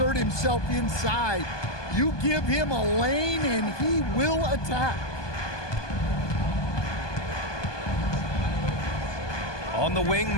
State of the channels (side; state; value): right; late; 1.2 ms